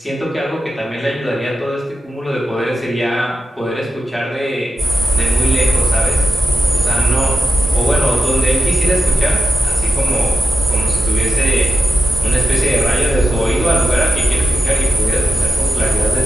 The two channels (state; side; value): normal; both; correlation 0.90